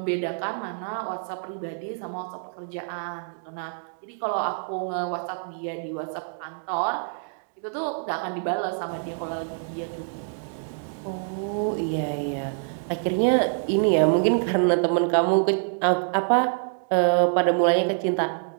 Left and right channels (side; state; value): left; silent; digital silence